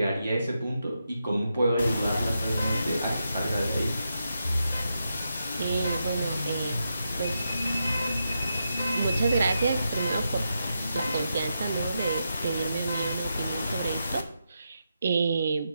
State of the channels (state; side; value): inverted; both; correlation -0.85